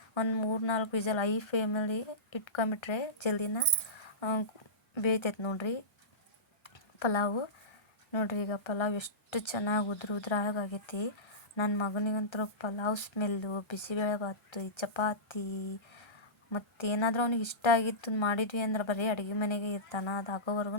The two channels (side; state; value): right; late; 1.3 ms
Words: ಒಂದು 3-4 ವಿಸಲ್ ಐ ಫ್ಲೇಮಲ್ಲಿ ಇಟ್ಕೊಂಬಿಟ್ರೆ ಜಲ್ದಿನ ಬೇಯ್ತೈತೆ ನೋಡಿರಿ ಪಲಾವು. ನೋಡಿರಿ ಈಗ ಪಲಾವ್ ಎಷ್ಟು ಚೆನ್ನಾಗಿ ಉದ್ರಾಗಿ ಆಗೈತಿ. ನನ್ನ ಮಗನಿಗಂತೂ ಪಲಾವ್ ಸ್ಮೆಲ್ಲು, ಬಿಸಿಬೇಳೆಭಾತು, ಚಪಾತಿ ಮತ್ತೇನಾದರೂ ಅವ್ನಿಗೆ ಇಷ್ಟ ಆಗಿತ್ತು ಮಾಡಿದ್ವಿ ಅಂದ್ರೆ ಬರೀ ಅಡುಗೆ ಮನೆಗೆ ಇರ್ತಾನೆ. ಅದು